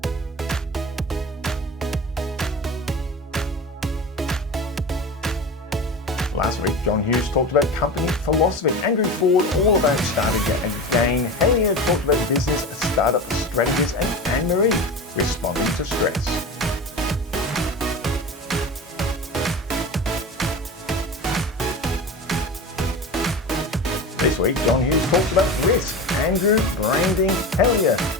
Last week, John Hughes talked about company philosophy. Andrew Ford, all about strategy again. Hellier talked about business, startup strategies, and Anne-Marie responding to stress. This week, John Hughes talks about risk. Andrew, branding. Hellier,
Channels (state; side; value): normal; both; correlation 0.29